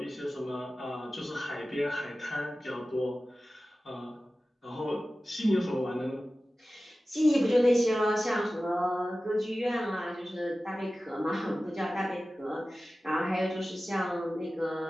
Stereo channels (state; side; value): normal; both; correlation 0.96